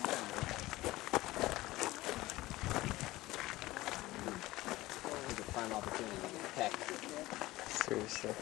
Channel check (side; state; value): right; quieter; 18.2 dB